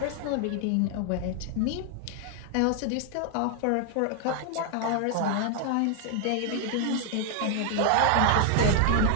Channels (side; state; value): both; different; correlation 0.00